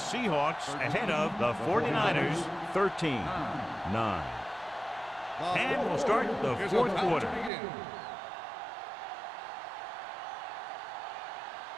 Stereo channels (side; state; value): left; drops out; at 7.5 s